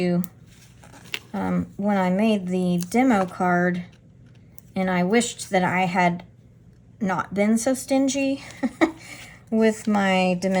when I made the demo card, and I wished that I had not been so stingy with my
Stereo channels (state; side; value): identical; both; correlation 1.00